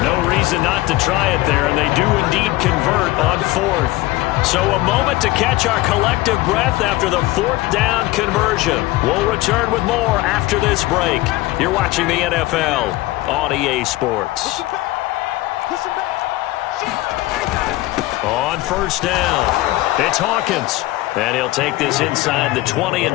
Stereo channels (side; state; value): right; quieter; 18.5 dB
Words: No reason not to try it there, and they do indeed convert on 4th. So a moment to catch our collective breath after the 4th down conversion. We'll return with more after this break. You're watching the NFL on EA Sports. On first down, it's Hawkins. And he'll take this inside the 20 and